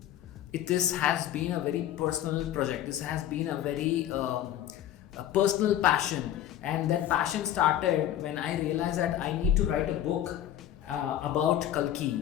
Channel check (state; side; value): quieter; right; 11.6 dB